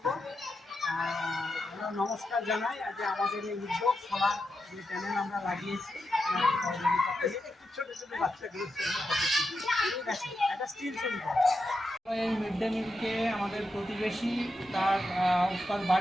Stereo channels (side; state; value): both; normal; correlation 0.87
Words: আমরা নমস্কার জানাই যে আমাদের এই উদ্যোগ সবার যে চ্যানেল আমরা লাগিয়েছি আপনার সহযোগিতা পেয়ে একটু ছোটো ছোটো বাচ্চাগুলো ঠিক আছে একটা স্টিল ছবি করা। এই মিড ডে মিলকে আমাদের প্রতিবেশী তার